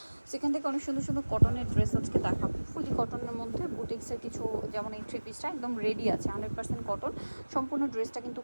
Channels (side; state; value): both; inverted; correlation -1.00